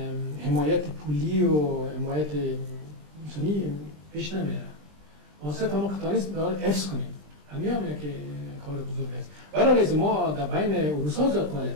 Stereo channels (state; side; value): late; left; 20 ms